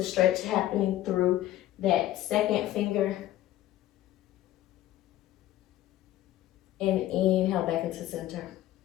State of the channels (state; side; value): quieter; right; 14.2 dB